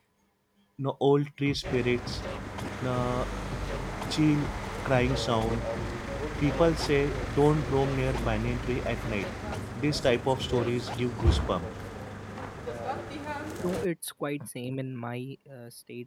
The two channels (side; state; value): both; identical; correlation 1.00